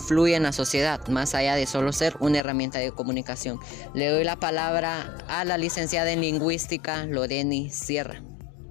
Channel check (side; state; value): right; drops out; at 2.4 s